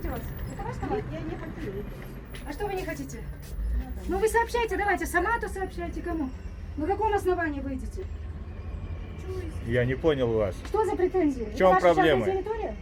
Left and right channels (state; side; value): identical; both; correlation 1.00